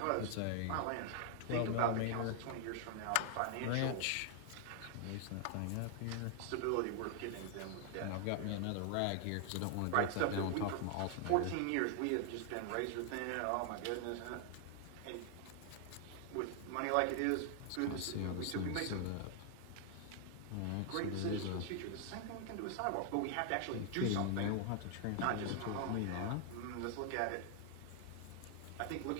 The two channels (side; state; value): both; different; correlation 0.00